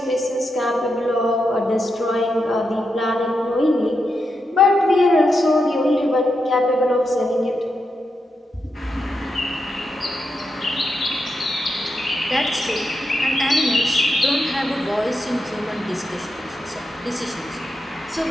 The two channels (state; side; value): normal; both; correlation 0.85